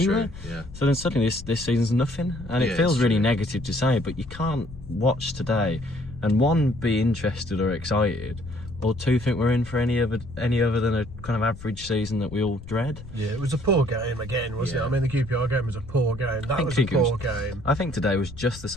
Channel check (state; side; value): noise; left; rumble, 15 dB below the sound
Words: Yeah. So then suddenly this season's nothing, and it feels really negative to say, but you can't watch today and one, be interested or excited, or two, think we're in for any other than a kind of average season that we all dread. Yeah, it was a poor game again, wasn't it? I mean, the QPR game was a poor game. That was a poor game. I think today was just the